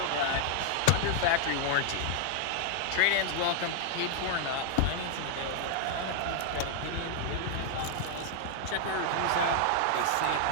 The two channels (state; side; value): different; both; correlation 0.00